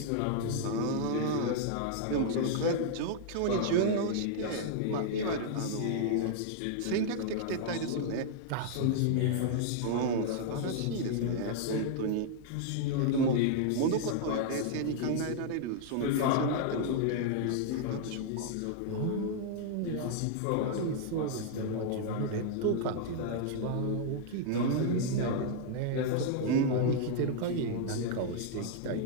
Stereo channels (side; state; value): both; different; correlation -0.01